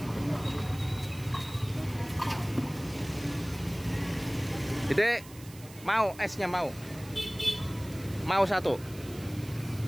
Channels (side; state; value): right; noise; hiss, 19 dB below the sound